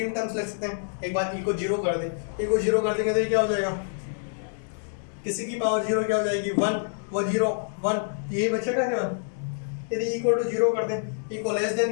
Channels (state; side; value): silent; right; digital silence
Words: टर्म्स लिख सकते हैं। एक बार ई को 0 कर दें, ई को 0 कर देंगे तो ये क्या हो जाएगा, किसी की पावर 0 क्या हो जाएगी 1, वो 0 1, यही बचेगा क्या। यदि इक्वल टू 0 कर दें, ई को लेस